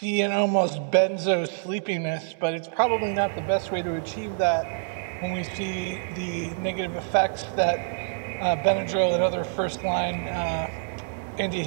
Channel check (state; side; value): silent; left; digital silence